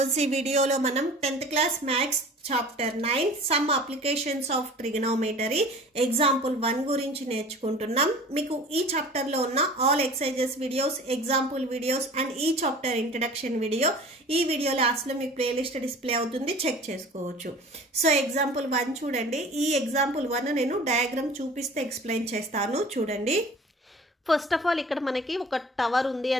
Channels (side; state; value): both; normal; correlation 0.43